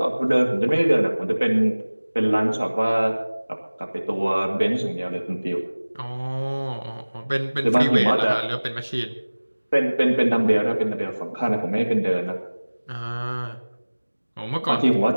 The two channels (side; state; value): both; inverted; correlation -1.00